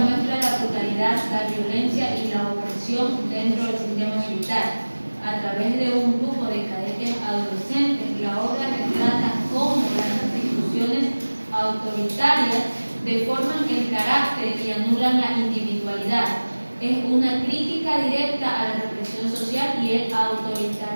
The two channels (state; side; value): inverted; both; correlation -1.00